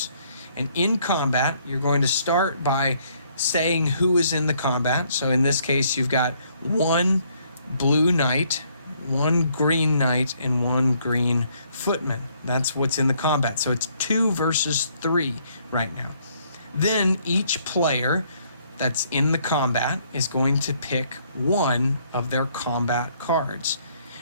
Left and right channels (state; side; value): inverted; both; correlation -0.67